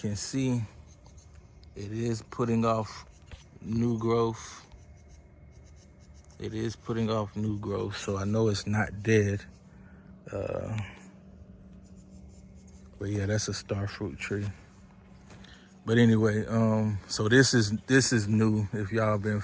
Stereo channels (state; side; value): identical; both; correlation 1.00